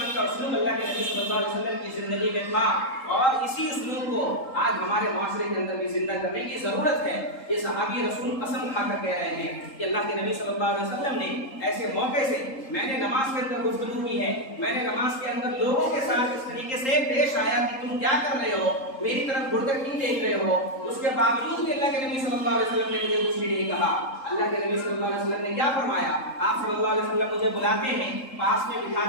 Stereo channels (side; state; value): right; late; 3.8 ms